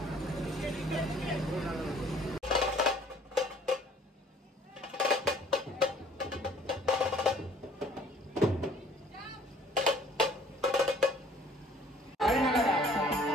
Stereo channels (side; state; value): both; normal; correlation 0.56